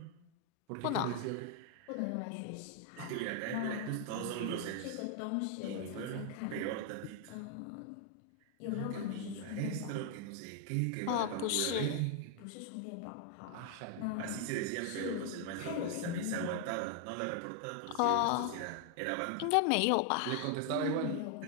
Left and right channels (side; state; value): both; different; correlation 0.00